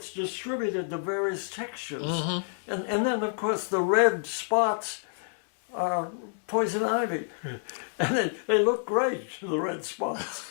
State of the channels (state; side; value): silent; right; 59 dB below the other